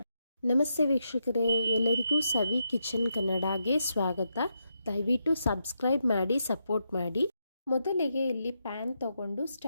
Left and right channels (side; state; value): both; inverted; correlation -0.83